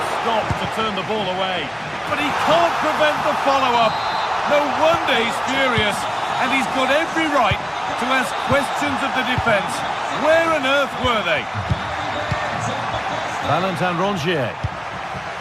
stop to turn the ball away. But he can't prevent the follow-up. No wonder he's furious. And he's got every right to ask questions of the defence. Where on earth were they? Valentin Rongier.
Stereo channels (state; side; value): identical; both; correlation 1.00